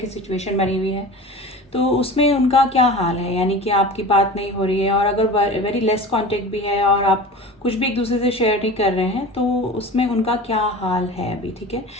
की सिचुएशन बनी हुई है तो उसमें उनका क्या हाल है, यानी कि आपकी बात नहीं हो रही है और अगर वेरी लेस कांटेक्ट भी है और आप कुछ भी एक दूसरे से शेयर नहीं कर रहे हैं तो उसमें उनका क्या हाल है अभी। ठीक है,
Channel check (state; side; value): normal; both; correlation 0.35